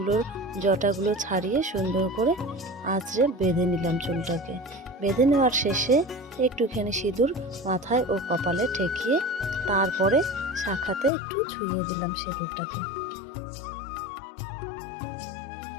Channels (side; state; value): right; drops out; at 11.1 s